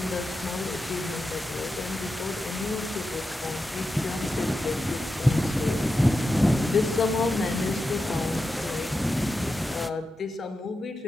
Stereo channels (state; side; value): normal; both; correlation 0.90